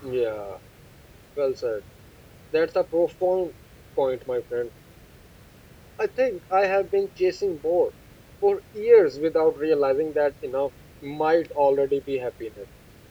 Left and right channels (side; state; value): both; identical; correlation 1.00